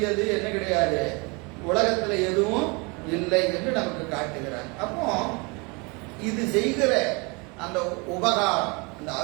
என்ன கிடையாது, உலகத்துல எதுவும் இல்லை என்று நமக்கு காட்டுகிறார். அப்போ இது செய்கிற அந்த உபகாரம், அந்த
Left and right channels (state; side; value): quieter; left; 29.2 dB